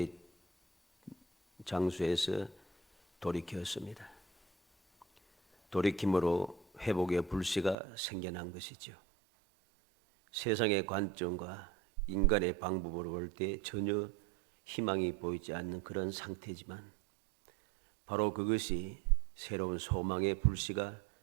장소에서 돌이켰습니다. 돌이킴으로 회복의 불씨가 생겨난 것이죠. 세상의 관점과 인간의 방법으로 볼 때 전혀 희망이 보이지 않는 그런 상태지만 바로 그것이 새로운 소망의 불씨가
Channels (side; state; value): left; drops out; at 7.8 s